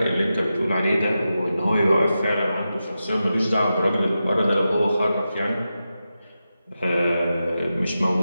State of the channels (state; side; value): inverted; both; correlation -0.91